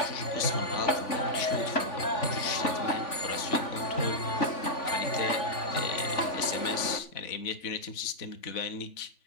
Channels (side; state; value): right; late; 3.5 ms